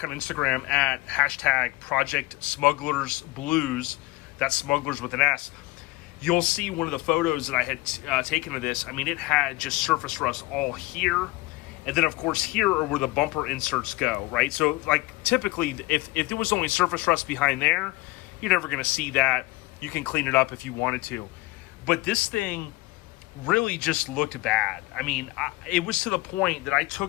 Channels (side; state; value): right; quieter; 20.8 dB